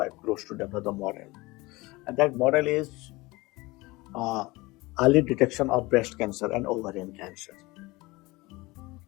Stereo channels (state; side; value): quieter; right; 22.2 dB